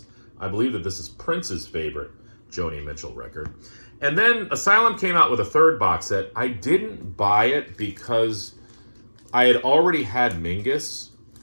I believe that this is Prince's favorite Joni Mitchell record. And then Asylum came out with a third box set. I didn't buy it because I had already had Mingus.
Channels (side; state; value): both; inverted; correlation -1.00